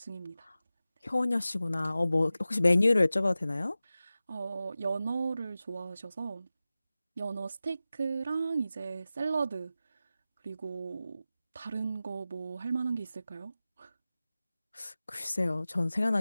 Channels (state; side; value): inverted; both; correlation -0.95